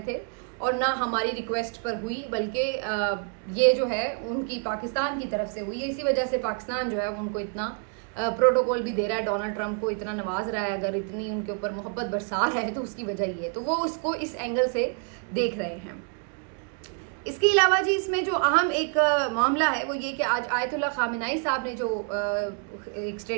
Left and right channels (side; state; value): left; quieter; 38.7 dB